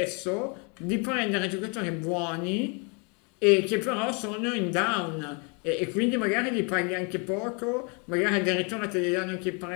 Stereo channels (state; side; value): quieter; right; 34.3 dB